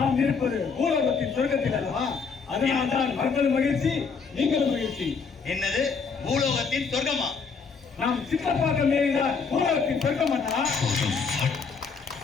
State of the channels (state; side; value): quieter; right; 5.4 dB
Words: இருப்பது பூலோகத்தின் சொர்க்கத்தில் அல்லவா? அதனால்தான் மக்களும் மகிழ்ச்சி, நீங்களும் மகிழ்ச்சி. என்னது பூலோகத்தின் சொர்க்கமா? நாம் சித்தப்பாக்கம் ஏறிதான் பூலோகத்தின் சொர்க்கம் அண்ணா.